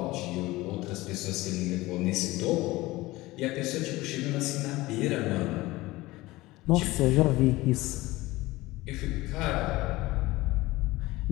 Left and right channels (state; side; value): quieter; right; 19.4 dB